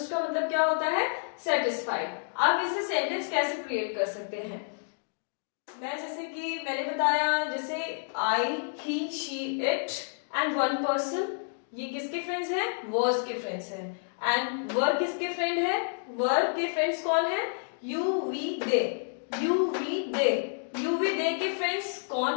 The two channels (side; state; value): right; silent; digital silence